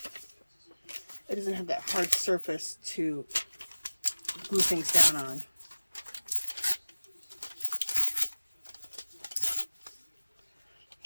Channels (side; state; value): both; inverted; correlation -1.00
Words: glue things down on.